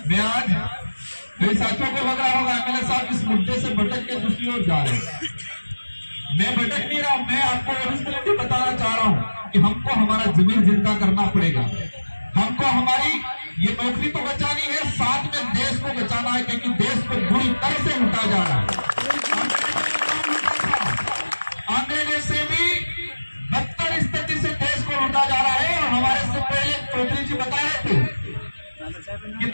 मैं आज मेरे साथियों को लग रहा होगा मेरे साथ इस मुद्दे से भटक के दूसरी ओर जा रहे हैं। मैं भटक नहीं रहा हूं, मैं आपको रिस्पॉन्सिबिलिटी बताना चाह रहा हूं कि हमको हमारा जमीन जिंदा करना पड़ेगा। हमको हमारी ये नौकरी तो बचानी है, साथ में देश को बचाना है, क्योंकि देश को बुरी तरह से लूटा जा रहा है। अंग्रेजों से भी बदतर स्थिति से देश को लूटा जा रहा है। और हमारे से पहले चौधरी जी बता रहे थे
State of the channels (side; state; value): both; inverted; correlation -1.00